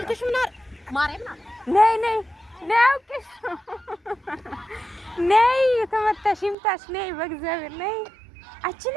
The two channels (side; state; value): left; drops out; at 6.6 s